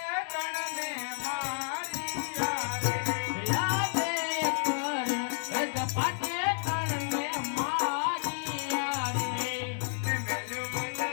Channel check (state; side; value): silent; right; digital silence